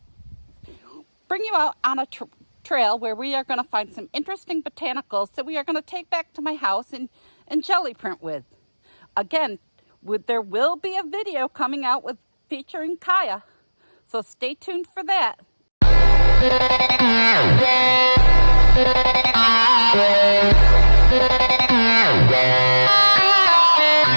bring you out on a trail where we are going to find some interesting botanicals that we are going to take back to my house and jelly print with. Again, there will be a video coming out featuring Kaya, so stay tuned for that.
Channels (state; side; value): inverted; both; correlation -1.00